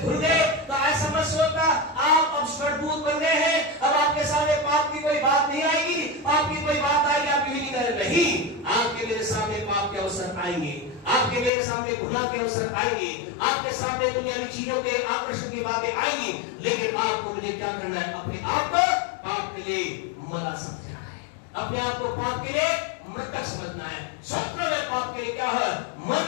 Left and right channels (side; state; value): right; drops out; at 11.5 s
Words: धुल गए तो ऐसा मत सोचना आप अब स्वर्गदूत बन गए हैं, अब आपके सामने पाप की कोई बात नहीं आएगी, पाप की कोई बात आएगी आप नहीं करें। नहीं, आपके मेरे सामने पाप के अवसर आएंगे, आपके मेरे सामने गुनाह के अवसर आएंगे, आपके सामने दुनियावी चीजों के आकर्षण की बातें आएंगी, लेकिन आपको मुझे क्या करना है, अपने आप को पाप के लिए मरा समझना है, अपने आप को पाप के लिए मृतक समझना है। स्वप्न में पाप के लिए क्या है, मर